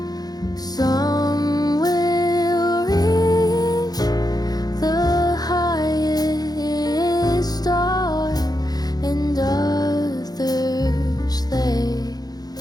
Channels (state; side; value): late; right; 0.19 ms